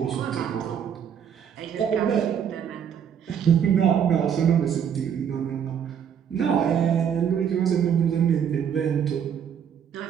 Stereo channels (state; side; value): quieter; left; 8.3 dB